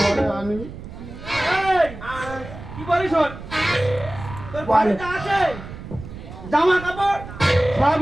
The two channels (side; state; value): right; noise; rumble, 13 dB below the sound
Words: আনবি। এই কি বলিস শোন, তোর বাড়িতে আছে জামা কাপড় সব